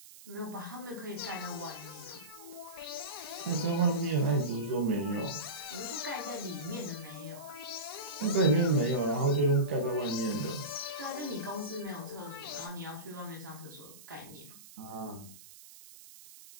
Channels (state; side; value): noise; right; hiss, 18 dB below the sound